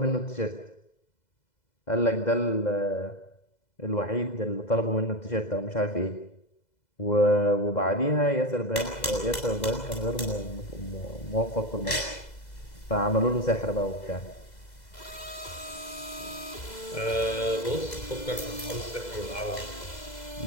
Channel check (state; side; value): late; right; 2.0 ms